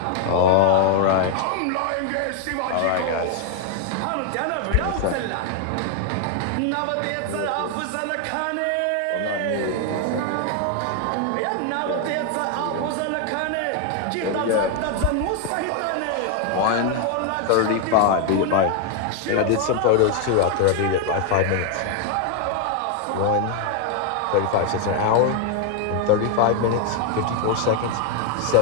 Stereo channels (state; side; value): different; both; correlation 0.01